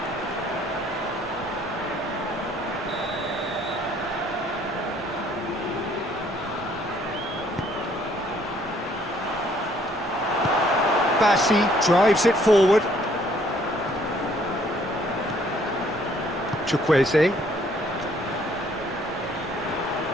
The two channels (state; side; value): normal; both; correlation 0.63